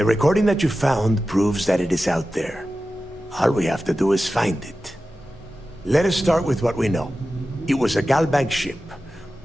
recording that you found proves that it is out there. All we have to do is find it. Let us start with what we know. It was a Galbank ship,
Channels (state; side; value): normal; both; correlation 0.94